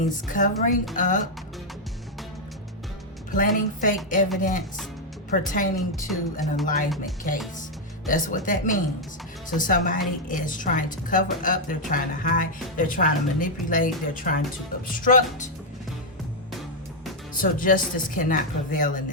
covering up, planting fake evidence pertaining to an alignment case. That's what that means. So somebody is trying to cover up, they're trying to hide, they're trying to manipulate, they're trying to obstruct. So justice cannot prevail in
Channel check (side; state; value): both; normal; correlation -0.01